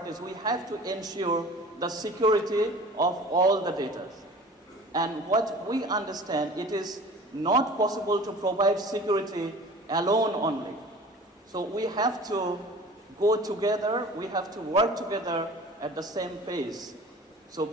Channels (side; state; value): both; normal; correlation 0.43